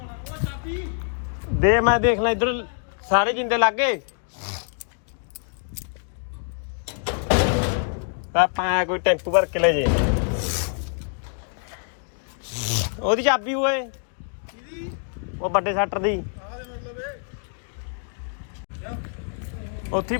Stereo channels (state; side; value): silent; right; 62 dB below the other